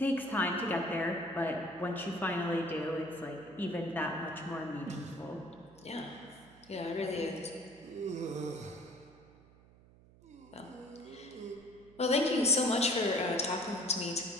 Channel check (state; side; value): noise; right; hum, 25 dB below the sound